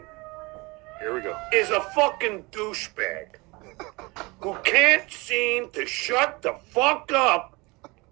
Here we go. Is a fucking douchebag who can't seem to shut the fuck up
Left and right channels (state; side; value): quieter; left; 25.0 dB